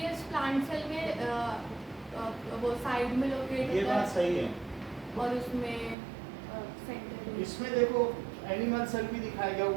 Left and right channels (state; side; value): drops out; left; at 6.0 s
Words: प्लांट सेल में वो साइड में लोकेट ये बात सही है। और उसमें सेंटर में। इसमें देखो एनिमल सेल भी दिखाया गया